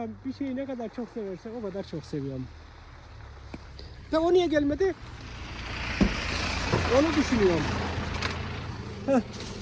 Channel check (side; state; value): both; identical; correlation 1.00